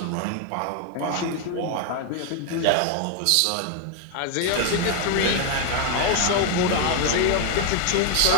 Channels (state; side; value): different; both; correlation 0.01